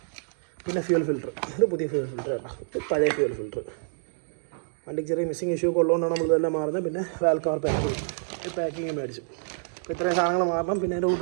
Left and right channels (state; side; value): silent; left; digital silence